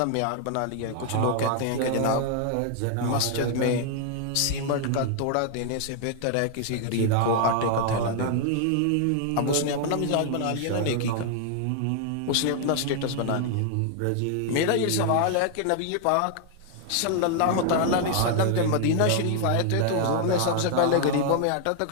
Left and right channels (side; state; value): both; different; correlation 0.00